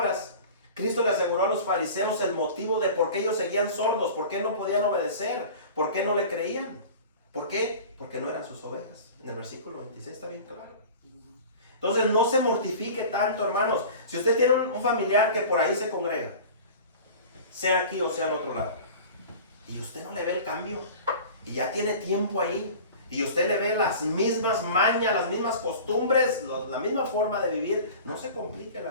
Cristo le aseguró a los fariseos el motivo de por qué ellos seguían sordos, por qué no podían obedecer, por qué no le creían. ¿Por qué? Porque no eran sus ovejas. En el versículo 26 está bien claro. Entonces no se mortifique tanto, hermanos. Si usted tiene un familiar que por ahí se congrega, sea aquí o sea en otro lado, y usted no le ve el cambio, y ya tiene tiempo ahí, y usted le ve las mismas mañas, las mismas costumbres, la misma forma de vivir, no se complique la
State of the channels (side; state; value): both; inverted; correlation -0.39